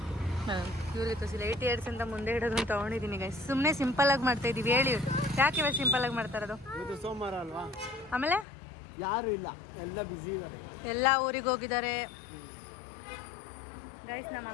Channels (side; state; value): right; drops out; at 8.5 s